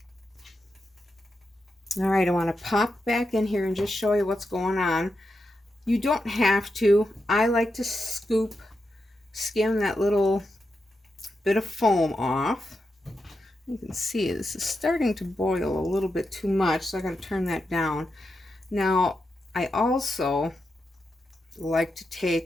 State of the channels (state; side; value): normal; both; correlation 0.87